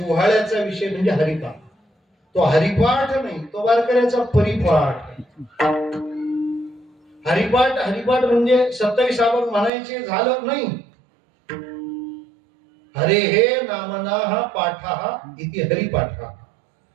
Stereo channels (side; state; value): left; drops out; at 9.7 s